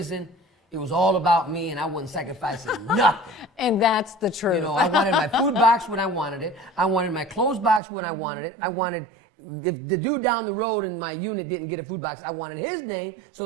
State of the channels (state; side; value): drops out; left; at 7.8 s